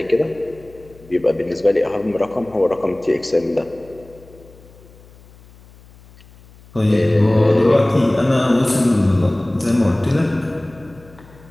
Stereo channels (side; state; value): left; noise; hum, 24 dB below the sound